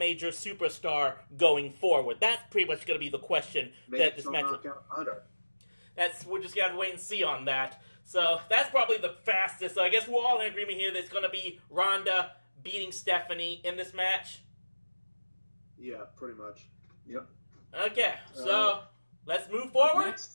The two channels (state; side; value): inverted; both; correlation -1.00